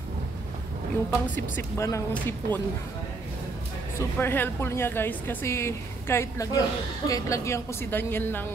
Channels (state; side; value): quieter; left; 3.6 dB